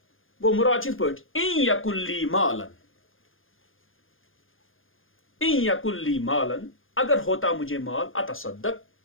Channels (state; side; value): late; right; 0.59 ms